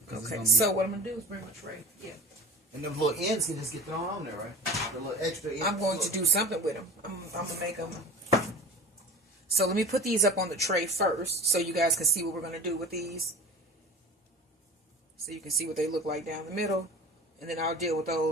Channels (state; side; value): normal; both; correlation 0.38